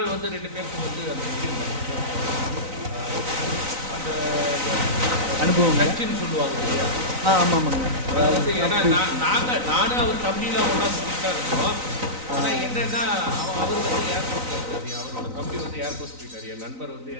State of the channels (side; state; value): left; late; 3.9 ms